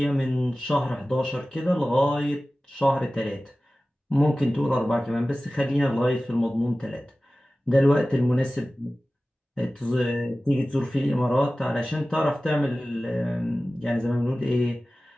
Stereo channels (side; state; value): both; normal; correlation 0.96